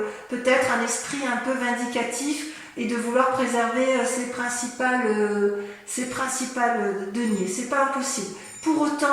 peut-être un esprit un peu vindicatif et de vouloir préserver ses principales deniers. C'est pas impossible. Pour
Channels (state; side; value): identical; both; correlation 1.00